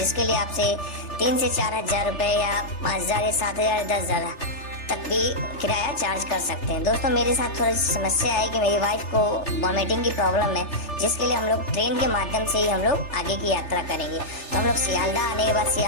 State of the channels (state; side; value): late; right; 3.4 ms